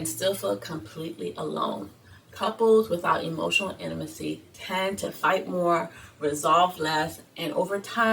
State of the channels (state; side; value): identical; both; correlation 1.00